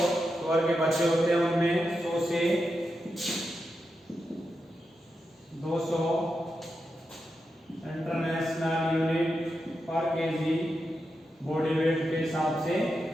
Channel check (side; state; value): both; normal; correlation 0.87